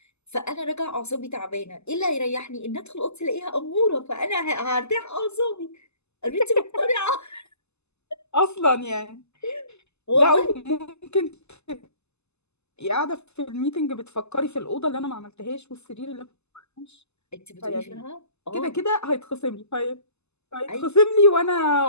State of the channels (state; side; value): late; right; 0.80 ms